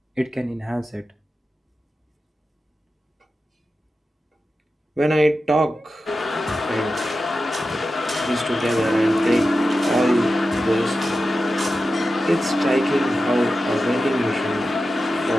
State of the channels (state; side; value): normal; both; correlation 0.92